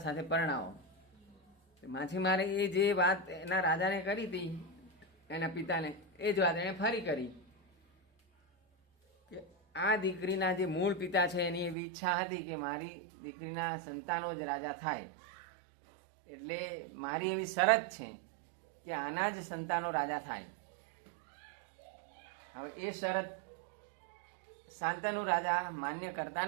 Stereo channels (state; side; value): drops out; left; at 11.8 s